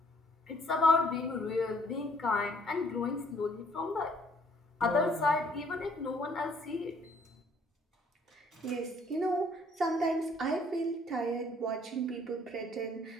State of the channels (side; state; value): both; normal; correlation 0.62